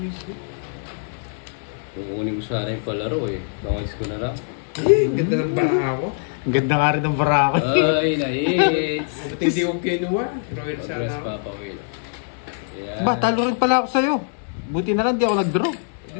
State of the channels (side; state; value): right; silent; digital silence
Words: Kukunin ko sana yung palaro eh. Bangis ko na lang. Eh, ganda ng bara ako. ang ganda nga rin ng barako. Ay, na-hits! Ba't hindi ko kinuha? Royal Progress sana ako. Papa Will. Ayan. Ba, talo rin pala ako sa'yo. Buti na lang di ako nag-draw.